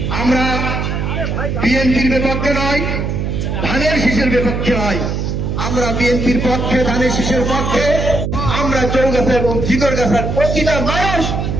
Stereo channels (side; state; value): right; noise; hum, 2 dB below the sound